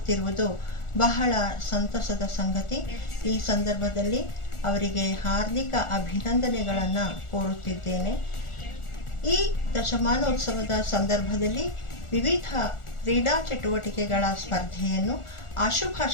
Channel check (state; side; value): late; right; 1.4 ms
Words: ಬಹಳ ಸಂತಸದ ಸಂಗತಿ. ಈ ಸಂದರ್ಭದಲ್ಲಿ ಅವರಿಗೆ ಹಾರ್ದಿಕ ಅಭಿನಂದನೆಗಳನ್ನು ಕೋರುತ್ತಿದ್ದೇನೆ. ಈ ದಶಮಾನೋತ್ಸವದ ಸಂದರ್ಭದಲ್ಲಿ ವಿವಿಧ ಕ್ರೀಡಾ ಚಟುವಟಿಕೆಗಳ ಸ್ಪರ್ಧೆಯನ್ನು,